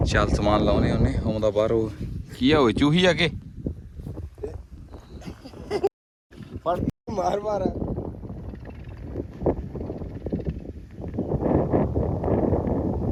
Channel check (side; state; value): both; identical; correlation 1.00